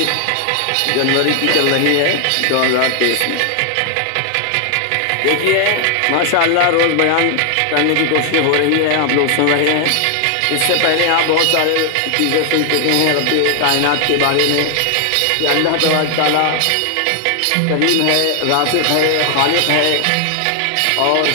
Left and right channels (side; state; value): both; different; correlation 0.00